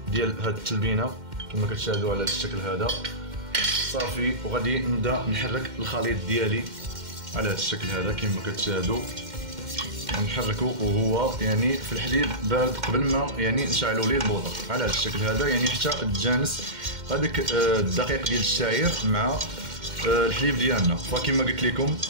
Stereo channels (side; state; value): left; late; 2.1 ms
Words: ديال هذه التلبينه كما كتشاهدوا على هذا الشكل هذا صافي. وغادي نبدا نحرك الخليط ديالي على هذا الشكل هذا كما كتشاهدوا، نحركو وهو يعني في الحليب بارد قبل ما يعني نشعلوا ليه البوطه على هذا الشكل هذا، يعني حتى تجانس هذاك الدقيق ديال الشعير مع الحليب ديالنا. فكما قلت لكم